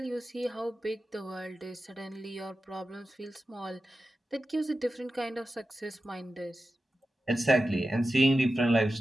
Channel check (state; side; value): normal; both; correlation 0.92